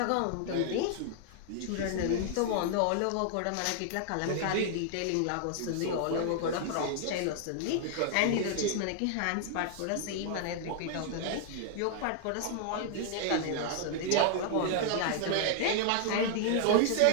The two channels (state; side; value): different; both; correlation 0.00